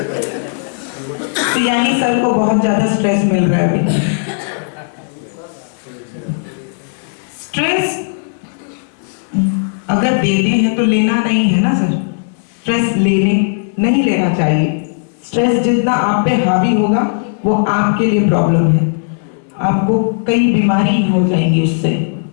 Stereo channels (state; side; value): silent; right; 63 dB below the other